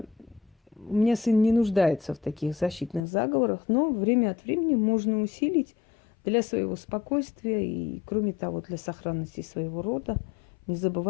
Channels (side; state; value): right; drops out; at 3.1 s